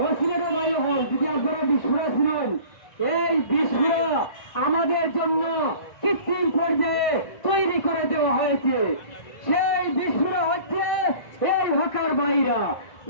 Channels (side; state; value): right; late; 1.6 ms